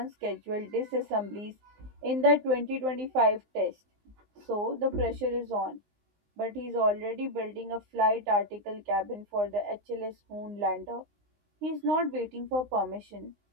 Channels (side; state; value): left; late; 19 ms